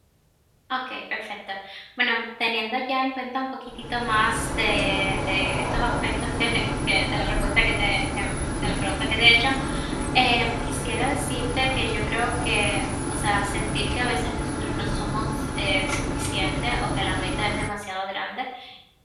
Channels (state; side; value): identical; both; correlation 1.00